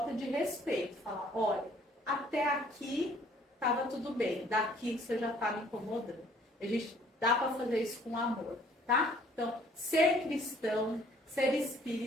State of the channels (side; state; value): both; normal; correlation 0.58